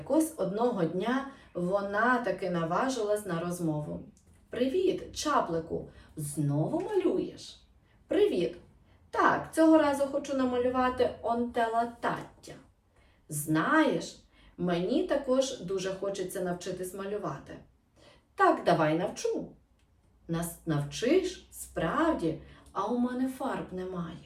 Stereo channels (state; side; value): identical; both; correlation 1.00